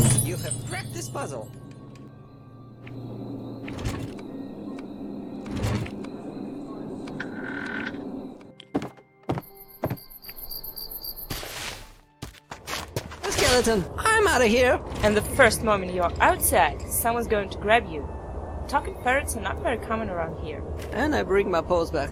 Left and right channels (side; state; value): both; identical; correlation 1.00